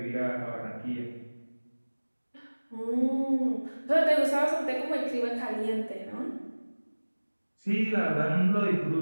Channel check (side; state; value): both; inverted; correlation -1.00